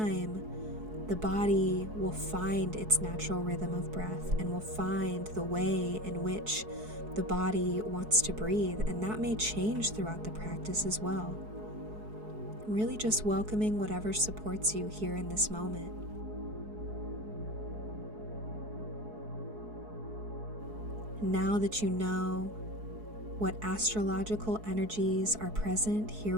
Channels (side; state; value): left; late; 4.7 ms